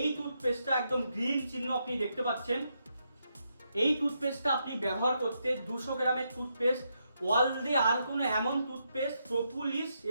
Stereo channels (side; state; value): both; inverted; correlation -0.81